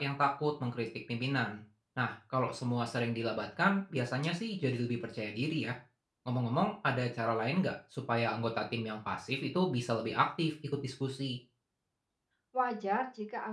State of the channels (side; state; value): both; identical; correlation 1.00